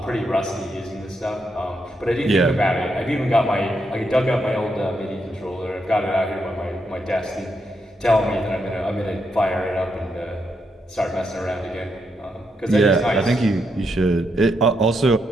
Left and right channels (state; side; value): normal; both; correlation 0.80